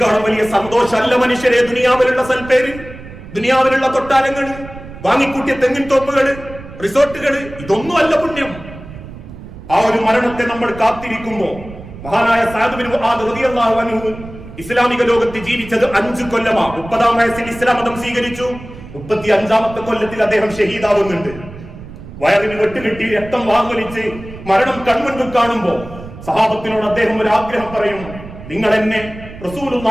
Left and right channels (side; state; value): right; noise; rumble, 15 dB below the sound